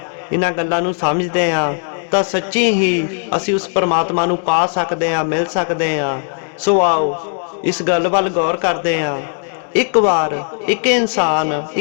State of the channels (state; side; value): silent; right; 56 dB below the other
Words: ਇਹਨਾਂ ਗੱਲਾਂ ਨੂੰ ਸਮਝਦੇ ਆ ਤਾਂ ਸੱਚੀ ਹੀ ਅਸੀਂ ਉਸ ਪਰਮਾਤਮਾ ਨੂੰ ਪਾ ਸਕਦੇ ਹਾਂ, ਮਿਲ ਸਕਦੇ ਹਾਂ। ਸੋ ਆਓ ਇਸ ਗੱਲ ਵੱਲ ਗੌਰ ਕਰਦੇ ਹਾਂ। ਇੱਕ ਵਾਰ ਇੱਕ ਇਨਸਾਨ,